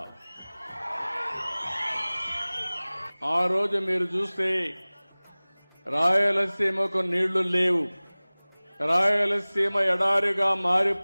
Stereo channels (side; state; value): both; inverted; correlation -1.00